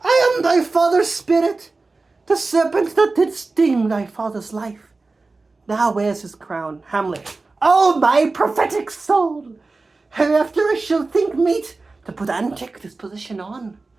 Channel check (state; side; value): quieter; left; 3.6 dB